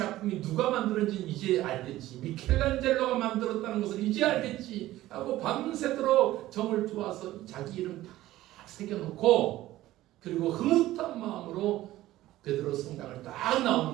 누가 만들었는지 이제 알겠지. 미켈란젤로가 만들었다는 것을 이제 알겠지 하고 밤새도록 정을 쪼아서 자기 이름 다 새겨놓고 그리고 흐뭇한 마음으로 베드로 성당을 딱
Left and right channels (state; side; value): quieter; left; 15.5 dB